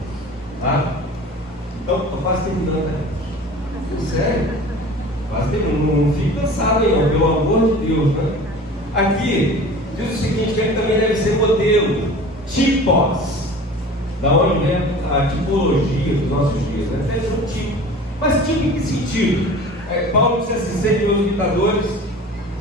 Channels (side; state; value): both; normal; correlation 0.40